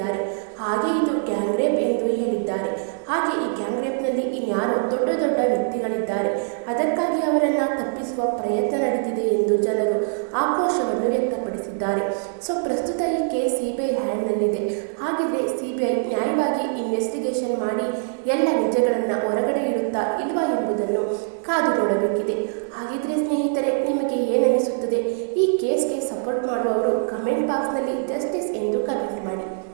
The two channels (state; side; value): silent; left; 55 dB below the other